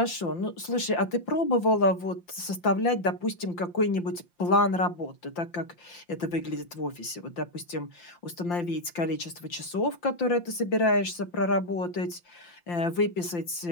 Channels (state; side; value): late; right; 5.8 ms